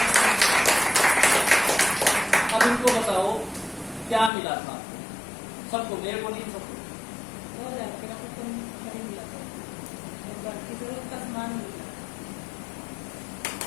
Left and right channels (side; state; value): right; drops out; at 4.3 s